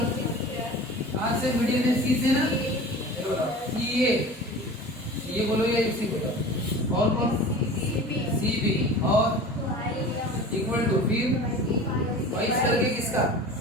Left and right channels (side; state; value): both; normal; correlation 0.38